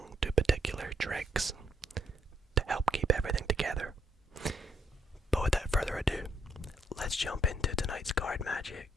to particular tricks to help keep everything together. But without further ado, let's jump into tonight's card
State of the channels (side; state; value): both; normal; correlation 0.72